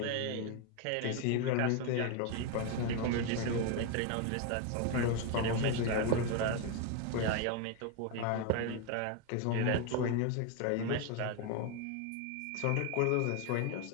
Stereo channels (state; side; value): different; both; correlation 0.01